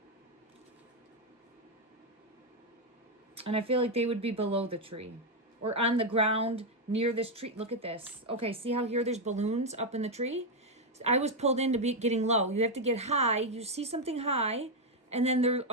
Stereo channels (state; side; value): normal; both; correlation 0.03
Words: I feel like they would be below the tree. Or on the ground near this tree. Look at this. Okay, see how here there's balloons up in the tree? I was pulled into getting low. You have to get high. You see something high. And then they're